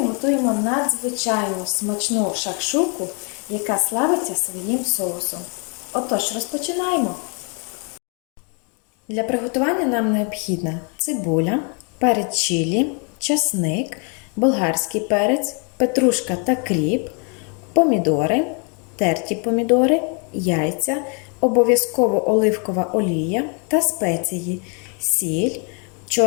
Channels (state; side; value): quieter; right; 37.3 dB